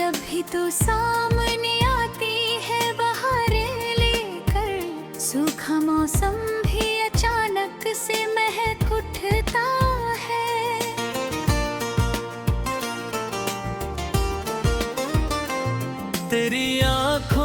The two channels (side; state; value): both; identical; correlation 1.00